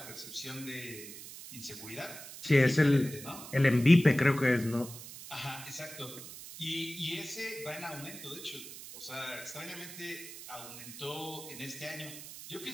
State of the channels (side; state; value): right; noise; hiss, 13 dB below the sound